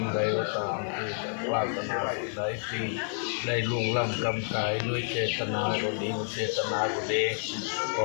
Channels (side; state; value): right; silent; digital silence